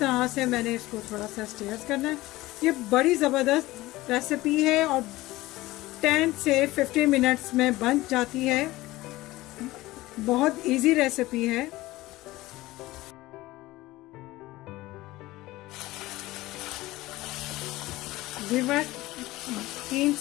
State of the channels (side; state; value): right; quieter; 18.4 dB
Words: से मैंने इसको थोड़ा सा स्टीयर करना है। ये बड़ी ज़बरदस्त रेसिपी है और 10 से 15 मिनट्स में बन जाती है। बहुत इजी रेसिपी है। व्यूअर्स, 3